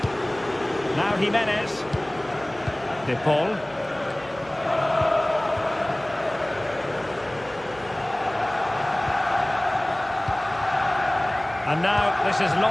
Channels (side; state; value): right; noise; hum, 22 dB below the sound